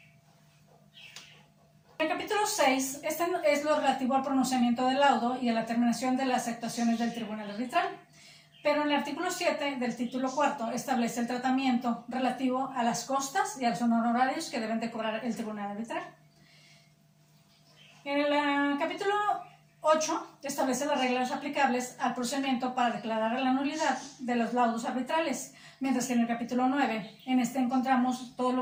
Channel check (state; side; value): identical; both; correlation 1.00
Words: En el capítulo 6, este es lo relativo al pronunciamiento del laudo y a la terminación de las actuaciones del tribunal arbitral. Pero en el artículo 7 del título cuarto establece el tratamiento relativo a las costas y a los honorarios que deben de cobrar el tribunal arbitral. En el capítulo 8 establece las reglas aplicables al procedimiento para declarar la nulidad de los laudos arbitrales, mientras que en el capítulo 9, en este encontramos todo